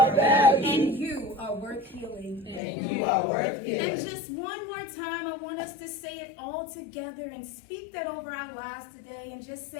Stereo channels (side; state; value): right; drops out; at 2.6 s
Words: valued. And you are worth healing. And you are worth And healing. just one more time, I want us to say it all together and speak that over our lives today and just